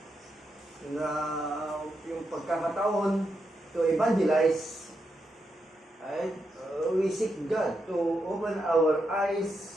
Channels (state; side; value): normal; both; correlation 0.84